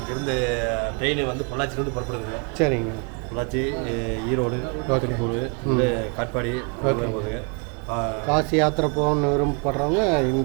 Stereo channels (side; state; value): left; quieter; 34.8 dB